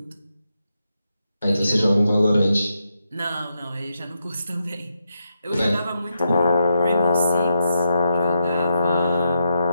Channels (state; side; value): inverted; both; correlation -0.83